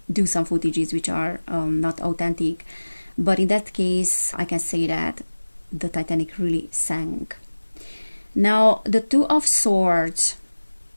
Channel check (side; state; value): both; inverted; correlation -1.00